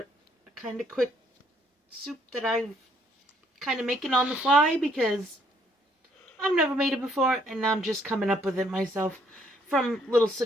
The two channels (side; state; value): both; normal; correlation 0.67